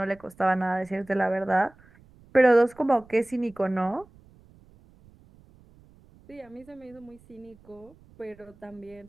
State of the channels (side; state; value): right; noise; rumble, 27 dB below the sound